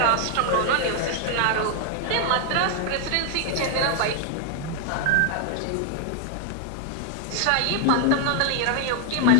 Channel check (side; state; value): both; different; correlation 0.01